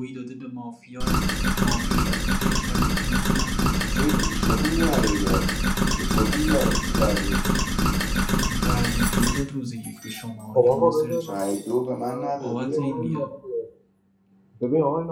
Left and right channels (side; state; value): both; identical; correlation 1.00